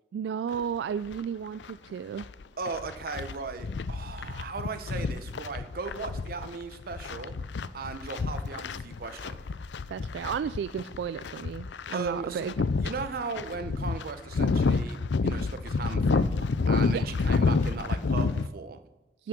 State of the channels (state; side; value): normal; both; correlation 0.50